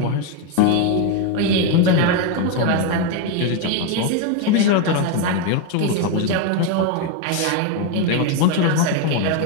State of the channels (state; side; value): different; both; correlation 0.02